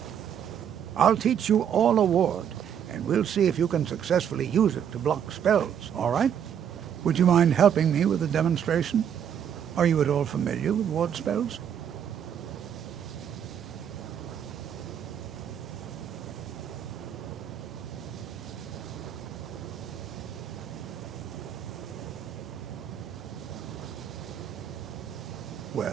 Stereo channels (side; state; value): left; quieter; 8.8 dB